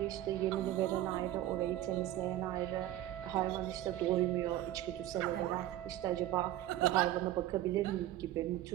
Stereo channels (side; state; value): left; quieter; 13.9 dB